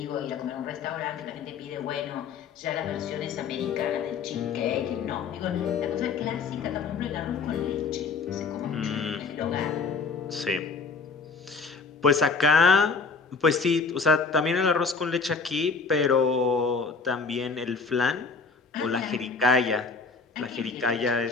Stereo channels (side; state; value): right; quieter; 4.8 dB